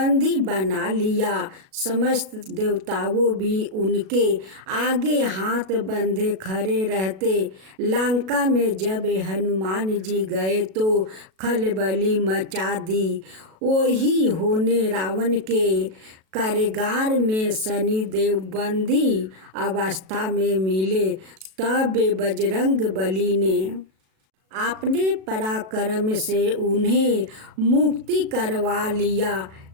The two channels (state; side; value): late; left; 37 ms